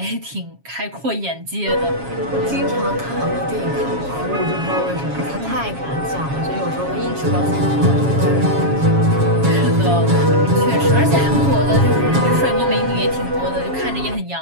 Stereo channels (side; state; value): left; late; 7.3 ms